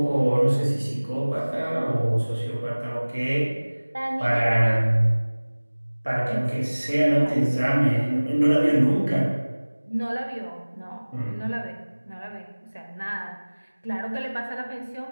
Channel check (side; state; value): both; inverted; correlation -1.00